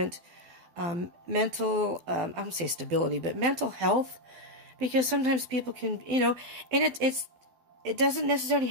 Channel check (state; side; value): late; left; 12 ms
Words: mental, I don't say stability, but mental health. Because sometimes people can, you know, and it doesn't necessarily